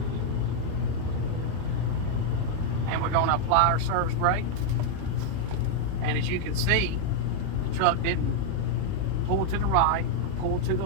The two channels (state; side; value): different; both; correlation 0.00